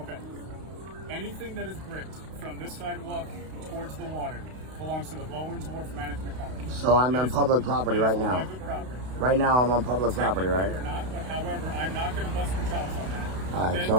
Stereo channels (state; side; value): late; left; 32 ms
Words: Okay. Anything that is bricked from this sidewalk towards the water belongs to the Bowen's Wharf Management Company. So I'm on It is- public property it is right now. Private property. Right now I'm on public property, Technically, right? We're not, but however, I'm not going to bust your chops on that. All right, Then so